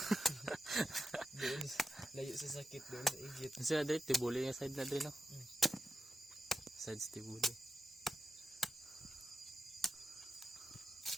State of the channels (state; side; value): normal; both; correlation 0.89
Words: Doon, layo sa sakit, doon sa igit. Kasi na dito, tibuli yung side na dito. Side sa tibuli.